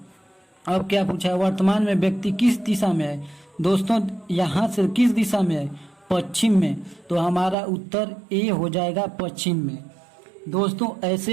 अब क्या पूछा है, वर्तमान में व्यक्ति किस दिशा में है। दोस्तों यहाँ से किस दिशा में है, पश्चिम में, तो हमारा उत्तर ए हो जाएगा, पश्चिम में। दोस्तों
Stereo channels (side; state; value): left; drops out; at 7.6 s